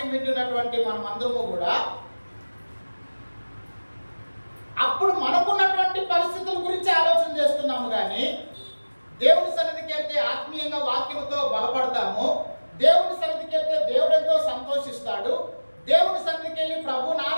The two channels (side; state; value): both; inverted; correlation -1.00